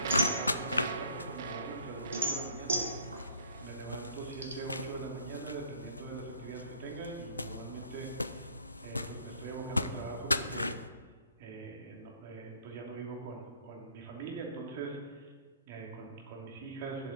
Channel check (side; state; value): both; inverted; correlation -0.58